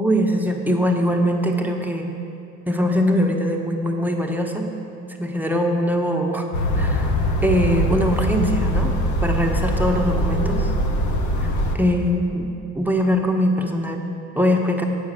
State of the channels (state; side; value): normal; both; correlation 0.57